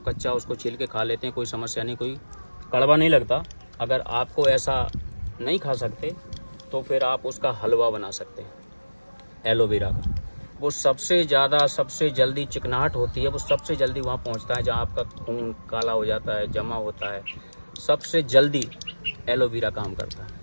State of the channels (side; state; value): both; inverted; correlation -1.00